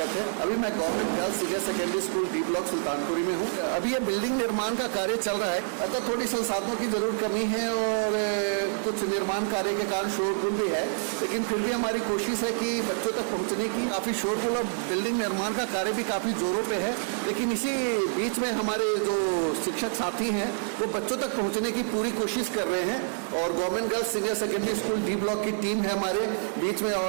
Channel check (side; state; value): left; silent; 60 dB below the other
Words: है। अभी मैं government girls senior secondary school D block Sultanpuri में हूँ। अभी ये बिल्डिंग निर्माण का कार्य चल रहा है, अतः थोड़ी संसाधनों की जरूर कमी है और कुछ निर्माण कार्य के कारण शोरगुल भी है, लेकिन फिर भी हमारी कोशिश है कि बच्चों तक पहुँचने की। काफ़ी शोरगुल और बिल्डिंग निर्माण का कार्य भी काफ़ी जोरों पे है, लेकिन इसी बीच में हमारे जो शिक्षक साथी हैं वो बच्चों तक पहुँचने की पूरी कोशिश कर रहे हैं। और government girls senior secondary school D block की टीम है हमारे बीच में,